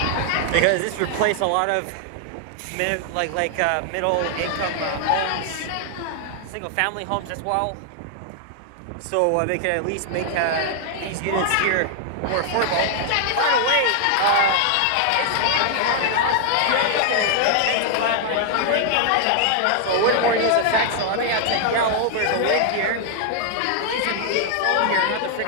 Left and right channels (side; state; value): both; different; correlation 0.00